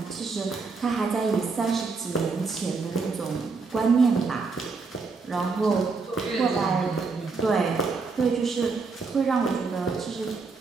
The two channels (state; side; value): quieter; left; 4.5 dB